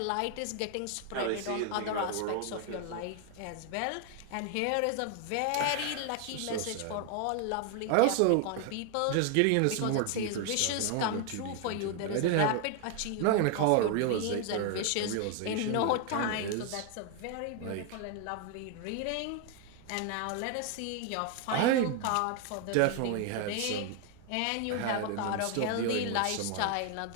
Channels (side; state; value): both; different; correlation 0.00